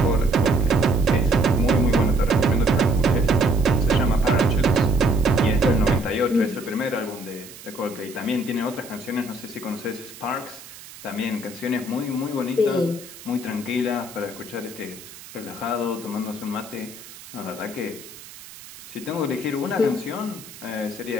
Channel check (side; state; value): right; noise; hiss, 17 dB below the sound